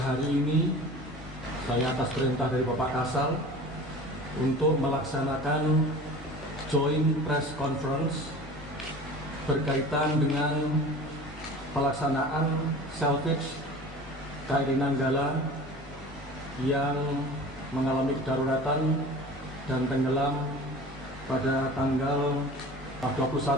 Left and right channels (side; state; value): both; normal; correlation 0.39